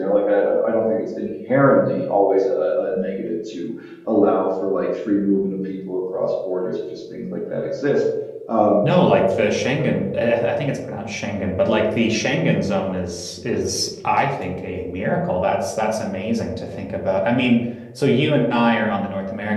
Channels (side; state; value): both; identical; correlation 1.00